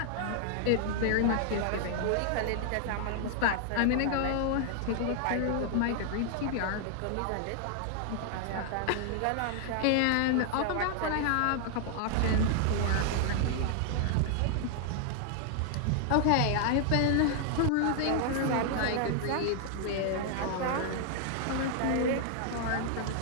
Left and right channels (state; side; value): different; both; correlation 0.00